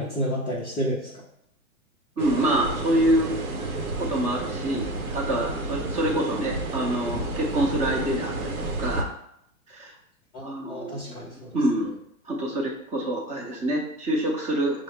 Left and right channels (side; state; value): both; normal; correlation 0.34